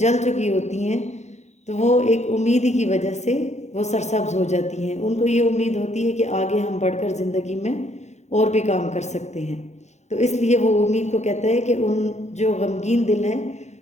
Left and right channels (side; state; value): right; late; 0.33 ms